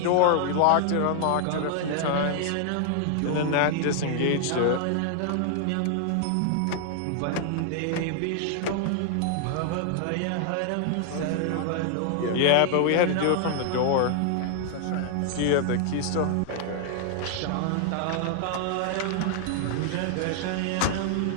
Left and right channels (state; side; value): different; both; correlation 0.00